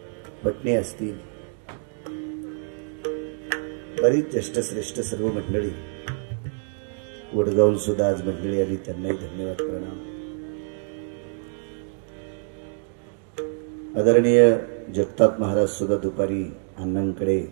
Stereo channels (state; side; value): silent; left; digital silence